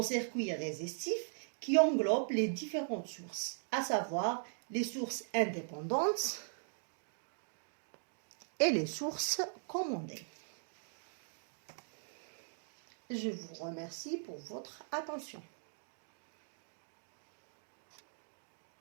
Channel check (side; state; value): left; silent; digital silence